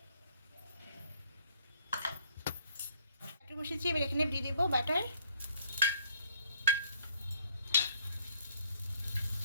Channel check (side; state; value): both; inverted; correlation -0.64